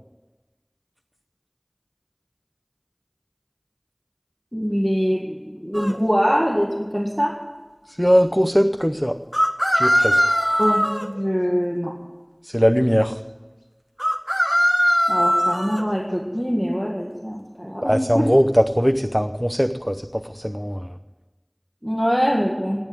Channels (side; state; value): both; identical; correlation 1.00